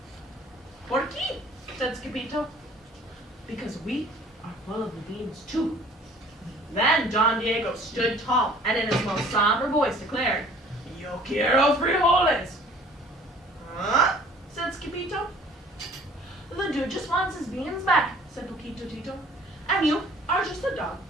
¿Por qué? Said Skippito. Because we are full of the beans too. Then Don Diego stood tall and in his most somber voice declared, Yo quiero frijoles. Huh? Said Skippito. The dude just wants his beans back, said Poquito Tito. And you are just a dog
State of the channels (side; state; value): both; normal; correlation 0.51